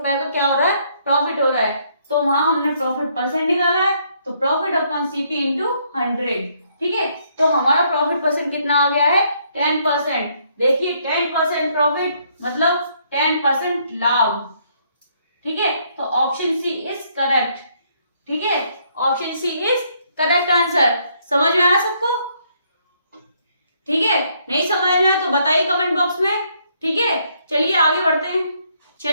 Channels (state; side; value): inverted; both; correlation -0.70